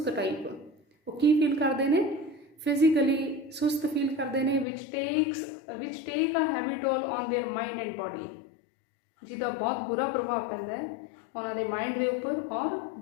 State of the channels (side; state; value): right; drops out; at 4.7 s